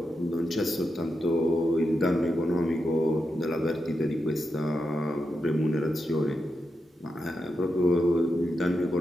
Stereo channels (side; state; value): both; normal; correlation 0.87